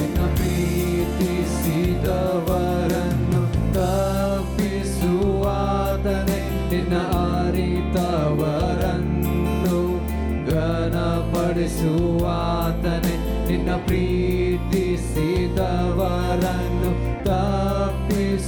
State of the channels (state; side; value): identical; both; correlation 1.00